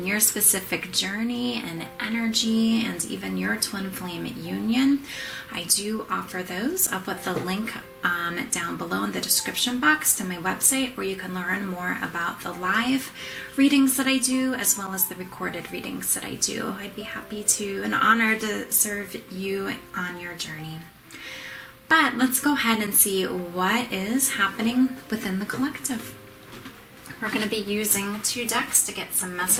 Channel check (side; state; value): both; identical; correlation 1.00